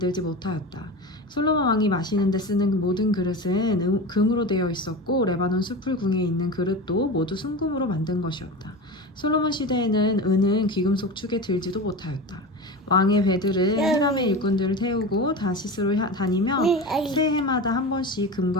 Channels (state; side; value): normal; both; correlation 0.27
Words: 못하였다. 솔로몬 왕이 마시는 데 쓰는 모든 그릇은 금으로 되어 있었고 레바논 숲풀궁에 있는 그릇도 모두 순금으로 만든 것이었다. 솔로몬 시대에는 은은 귀금속 축에 들지도 못하였다. 왕의 배들은 히람의 일꾼들을 태우고 다시스로 다니며 새해마다 한 번씩